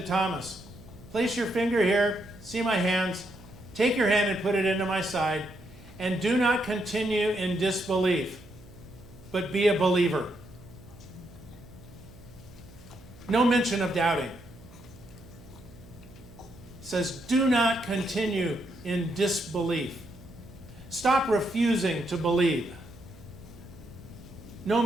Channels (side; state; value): right; noise; hum, 22 dB below the sound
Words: Thomas, "Place your finger here, see my hands, take your hand and put it into my side, and do not continue in disbelief, but be a believer." No mention of doubting. It says, do not continue in disbelief. Stop refusing to believe. No